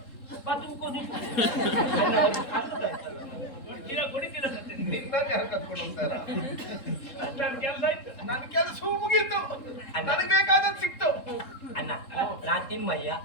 ಕೊಡಿತೀರ ನಿನ್ನನ್ನು ಯಾರು ಕತ್ಕೊಂಡು ಹೋಗ್ತಾರ? ನನ್ನ ಕೆಲಸ ಆಯ್ತು. ನನ್ನ ಕೆಲಸ ಮುಗೀತು, ನನಗೆ ಬೇಕಾದದ್ದು ಸಿಕ್ತು. ಅಣ್ಣ ನಾ ತಿಮ್ಮಯ್ಯ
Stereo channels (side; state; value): right; late; 3.7 ms